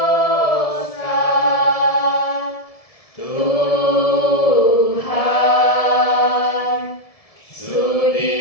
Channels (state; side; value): late; right; 1.7 ms